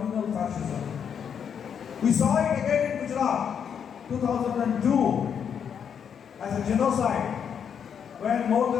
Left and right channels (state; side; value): quieter; right; 7.7 dB